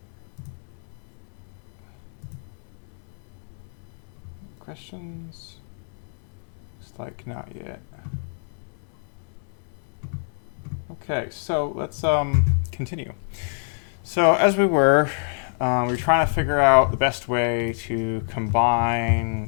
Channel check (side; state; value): right; silent; digital silence